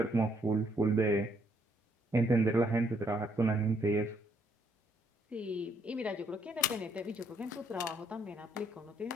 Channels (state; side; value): normal; both; correlation 0.69